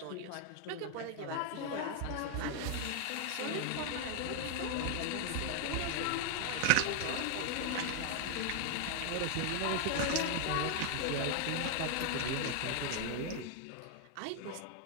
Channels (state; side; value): different; both; correlation 0.01